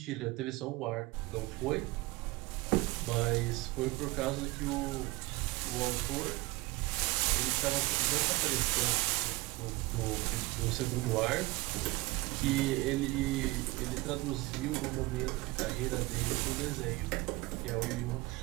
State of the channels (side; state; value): left; quieter; 21.6 dB